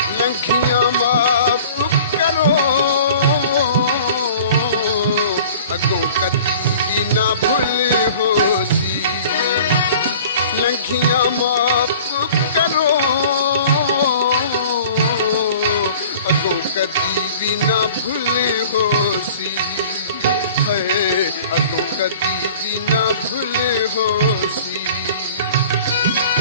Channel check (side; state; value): both; inverted; correlation -0.46